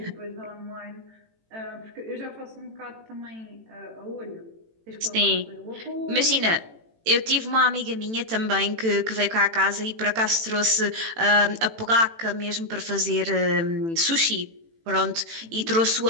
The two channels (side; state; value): left; late; 18 ms